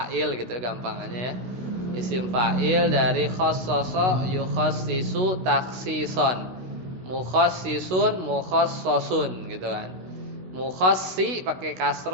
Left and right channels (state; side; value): late; left; 16 ms